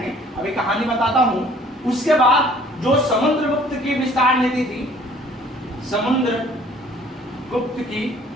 अभी कहानी बताता हूं। उसके बाद जो समुद्रगुप्त की विस्तार नीति थी, समुद्रगुप्त की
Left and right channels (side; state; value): both; normal; correlation 0.55